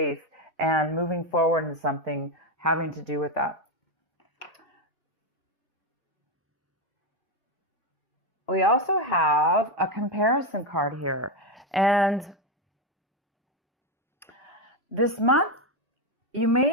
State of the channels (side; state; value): both; normal; correlation 0.09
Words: and moving forward in something having to do with that. We also have a comparison card here. And this month, you